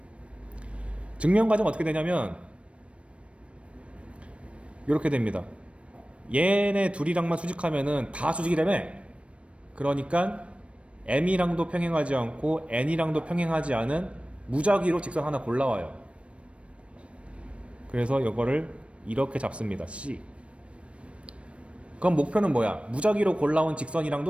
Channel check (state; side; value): late; left; 0.061 ms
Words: 증명 과정 어떻게 되냐면 이렇게 됩니다. 얘네 둘이랑만 수직하면은 다 수직이라며. 그러니까 M이랑도 평행하지 않고 N이랑도 평행하지 않은 무작위로 직선 하나 골라와요. 그래서 이거를 이렇게 잡습니다. C. 그럼 목표는 뭐야? 무작위로 골라온